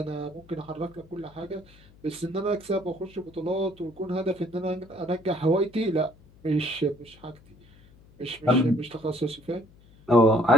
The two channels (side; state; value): left; noise; hum, 26 dB below the sound